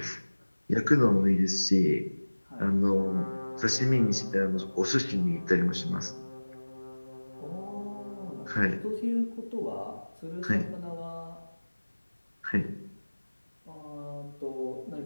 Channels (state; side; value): inverted; both; correlation -1.00